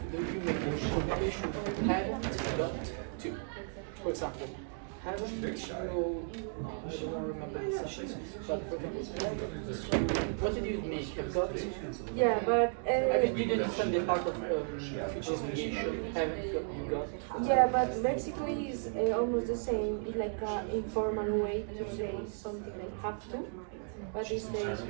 the obligation have got to. For example, haven't you, I don't remember the sessions, but for example, what did you make? Have got to? Yeah, but I mean, you didn't understand the part of future obligation, haven't got. yeah, but basically it's almost the same. It's like an informal way to say something like have to, but it's the have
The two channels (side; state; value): left; silent; 55 dB below the other